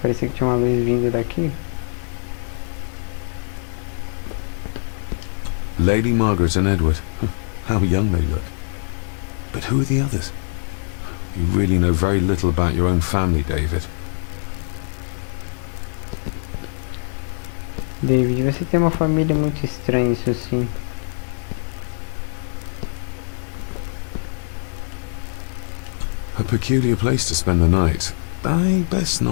que tinha uma luz vindo daqui. Lady Margaret and Edward. How young they look. But who are the others? You really know very little about your own family, David. David, você tem uma família muito estranha, isso sim. A peculiar place to spend the night. I best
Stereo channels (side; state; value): right; silent; digital silence